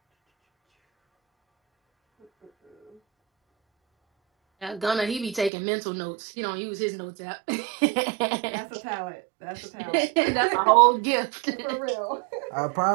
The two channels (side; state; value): left; drops out; at 5.5 s